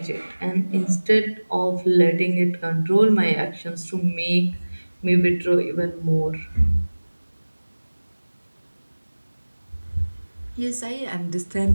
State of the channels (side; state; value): both; inverted; correlation -1.00